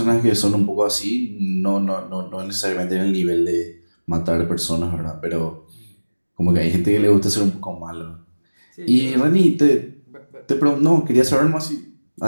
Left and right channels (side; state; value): both; inverted; correlation -1.00